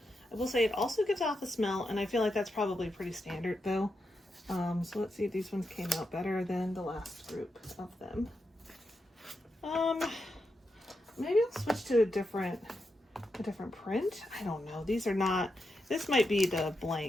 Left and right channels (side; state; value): both; normal; correlation 0.86